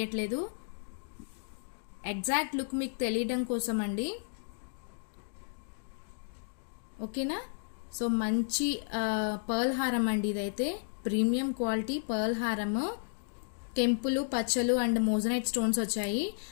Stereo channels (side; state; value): right; silent; digital silence